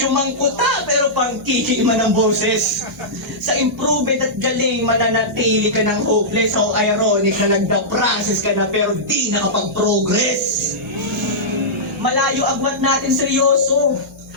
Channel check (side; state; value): both; normal; correlation -0.14